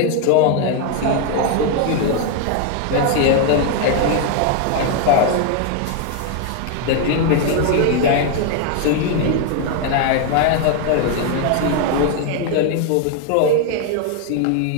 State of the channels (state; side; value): different; both; correlation 0.01